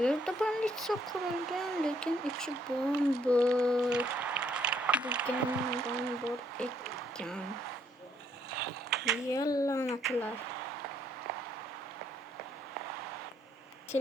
banditsiya qurilgan, lekin ichi bo'm-bo'sh. Degandan bor ekan. Yallanatlar.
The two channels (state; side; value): normal; both; correlation 0.69